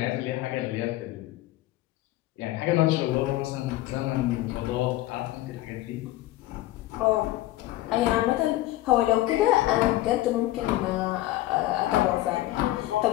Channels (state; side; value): quieter; right; 16.1 dB